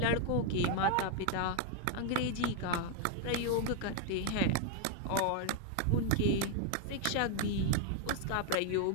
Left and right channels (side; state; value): both; different; correlation 0.00